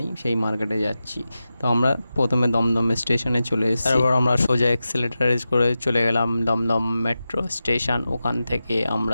সেই মার্কেটে যাচ্ছি। তো আমরা প্রথমে দমদম স্টেশনে চলে এসেছি, তারপর আমরা সোজা এক্সেলেটার করে চলে গেলাম দমদম মেট্রো স্টেশন। ওখান থেকে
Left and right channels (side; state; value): both; inverted; correlation -0.93